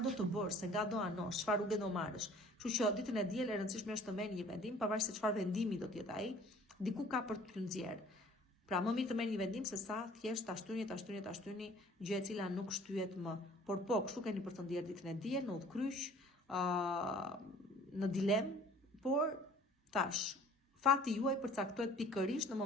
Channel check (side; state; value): both; normal; correlation 0.51